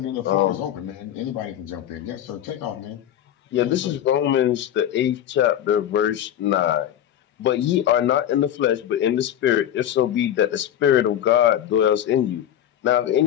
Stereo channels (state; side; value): quieter; right; 10.9 dB